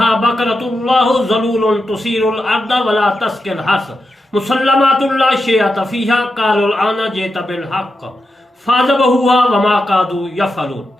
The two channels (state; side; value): normal; both; correlation 0.88